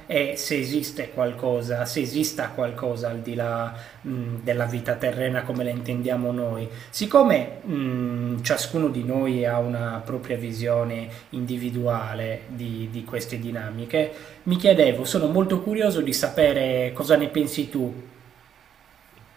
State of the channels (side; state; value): left; quieter; 8.9 dB